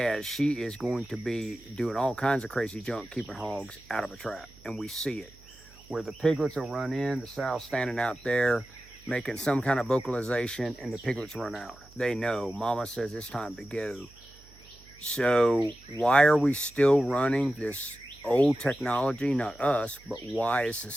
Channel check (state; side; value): noise; right; hum, 24 dB below the sound